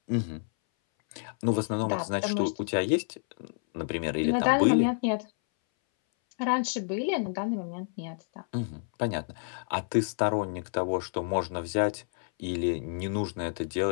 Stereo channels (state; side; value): silent; right; 58 dB below the other